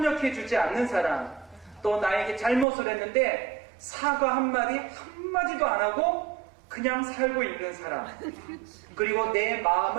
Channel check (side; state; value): left; drops out; at 2.7 s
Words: 않는 사람, 또 나에게 잘못을 했는데 사과 한마디도 안 하고 그냥 살고 있는 사람, 그리고 내